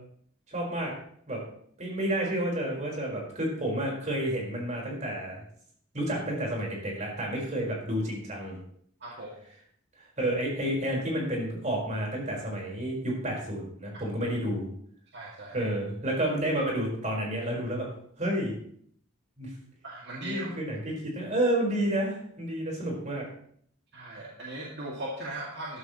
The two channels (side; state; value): both; normal; correlation 0.32